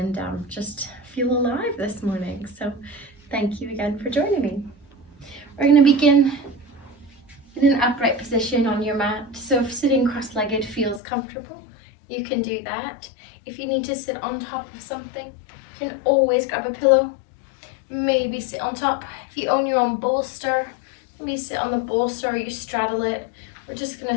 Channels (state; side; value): drops out; right; at 11.0 s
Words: just feel alive this morning. So thank you again for joining me. We're going to begin in an upright position on your mat. So if sitting cross-legged feels comfortable, you can do that. If you need to sit on top of something, you can always grab a pillow, maybe sit on top. If you own your own bolster, maybe sit on the bolster or you straddle it. We're just